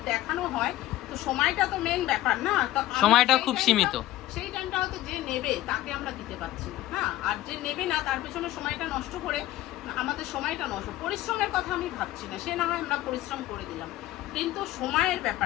দেখানো হয় তো সময়টা তো মেন ব্যাপার না, তো সময়টা খুব সীমিত। সেই টাইমটা হয়তো যে নেবে তাকে আমরা দিতে পারছি না, হ্যাঁ, আর যে নেবে না তার পেছনে সময়টা নষ্ট করে আমাদের সময়টা নষ্ট। পরিশ্রমের কথা আমি ভাবছি না, সে না হয় আমরা পরিশ্রম করে দিলাম, কিন্তু সময়ের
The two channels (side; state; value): right; quieter; 15.3 dB